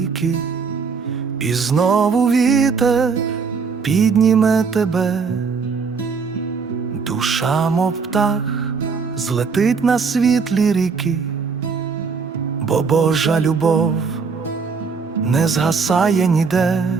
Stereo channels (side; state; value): left; quieter; 5.3 dB